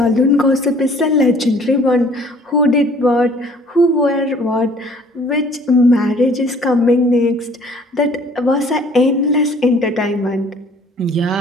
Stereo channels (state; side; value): normal; both; correlation 0.55